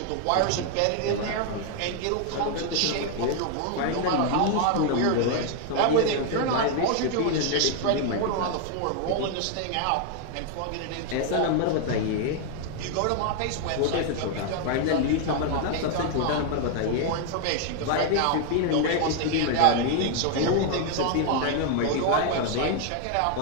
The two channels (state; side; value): different; both; correlation 0.00